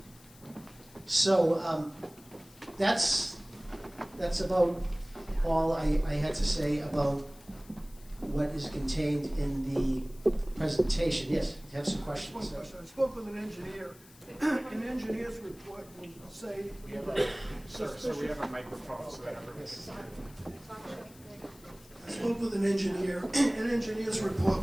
So that's about all I had to say about what is contained in the presentation. Yes, you have some questions. One question. I spoke with an engineer. An engineer's report will say So we have a microphone so that everybody can hear. I spoke with an engineer. An engineer's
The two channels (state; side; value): noise; left; hiss, 24 dB below the sound